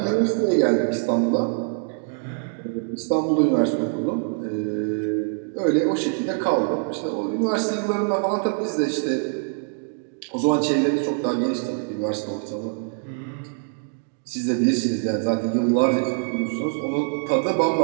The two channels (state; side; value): silent; left; 63 dB below the other